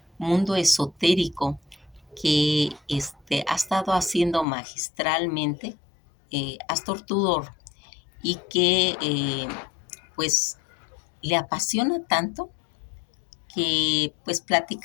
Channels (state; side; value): drops out; right; at 4.5 s